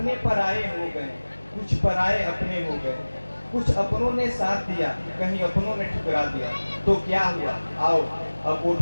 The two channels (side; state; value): both; inverted; correlation -1.00